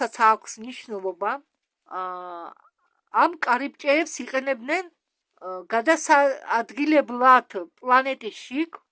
აქვს მნიშვნელობა. ამ კარიბჭეებს იყენებდნენ გადასაადგილებლად პლანეტის შიგ,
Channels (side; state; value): both; identical; correlation 1.00